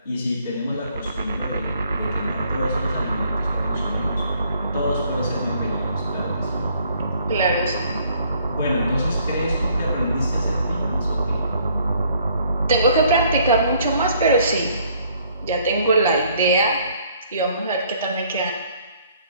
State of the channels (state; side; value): inverted; both; correlation -0.63